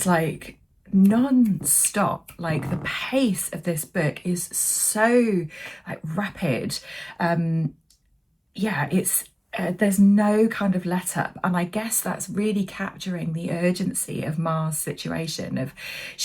like non-stop. Like the pace of this book is so like rapid. Yeah, it's there's no kind of let up, and I guess that's really capturing the urgency of Ma's situation. Of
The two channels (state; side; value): identical; both; correlation 1.00